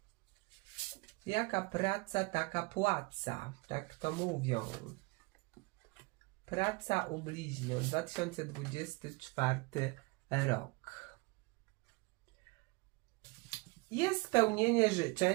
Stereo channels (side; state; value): left; quieter; 25.8 dB